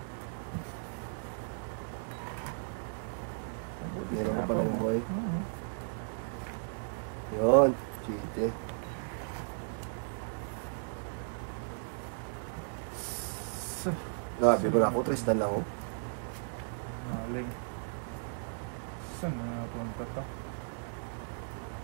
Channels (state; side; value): silent; left; digital silence